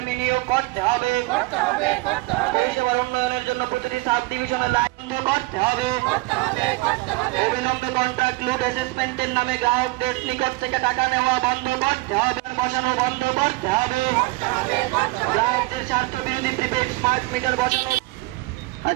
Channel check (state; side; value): quieter; left; 22.7 dB